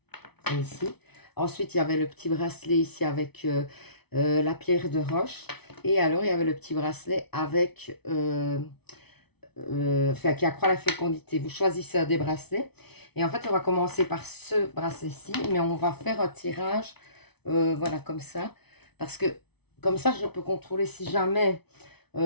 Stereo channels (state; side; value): late; right; 0.99 ms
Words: ici. Ensuite il y avait le petit bracelet ici avec la pierre de roche. Et alors il y avait le petit bracelet avec, enfin qui accroît la fécondité. Vous choisissez un des bracelets. Et en fait on va commencer par ce bracelet-ci, mais on va faire un tirage, voilà comme ça. Parce que comme ça je peux contrôler si jamais,